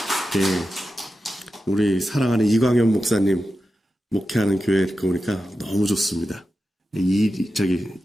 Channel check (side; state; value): both; normal; correlation 0.91